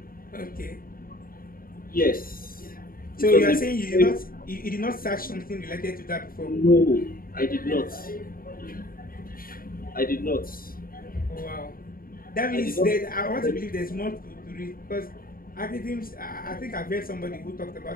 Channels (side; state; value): right; late; 0.42 ms